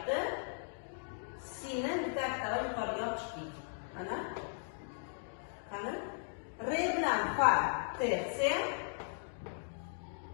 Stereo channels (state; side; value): silent; right; digital silence